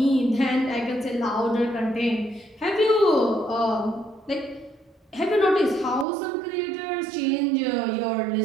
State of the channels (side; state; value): left; drops out; at 6.1 s